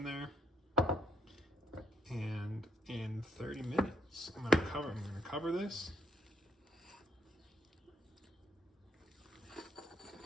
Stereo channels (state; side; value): normal; both; correlation 0.71